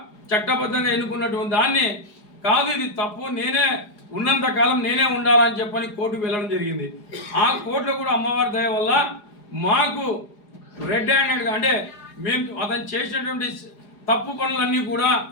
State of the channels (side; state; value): right; late; 4.8 ms